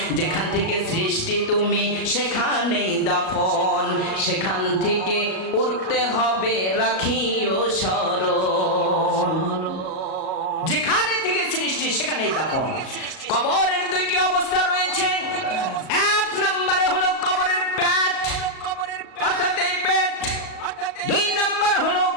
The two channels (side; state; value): right; late; 37 ms